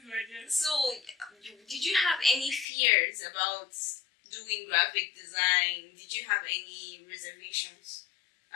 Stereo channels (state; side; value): drops out; right; at 2.7 s